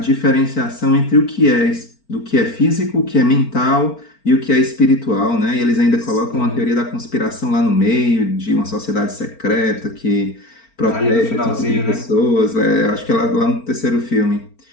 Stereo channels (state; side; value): late; right; 4.4 ms